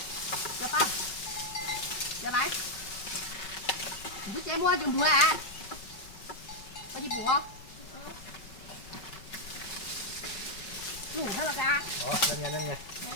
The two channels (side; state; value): right; late; 5.3 ms